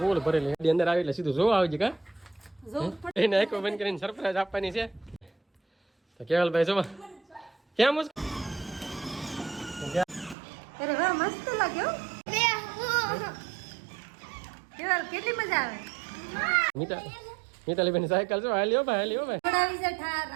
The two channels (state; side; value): drops out; left; at 10.4 s